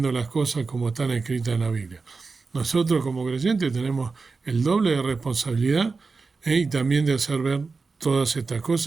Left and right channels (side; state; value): left; quieter; 4.3 dB